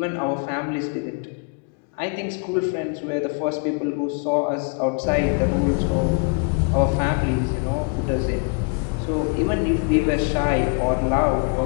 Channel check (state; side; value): quieter; right; 35.6 dB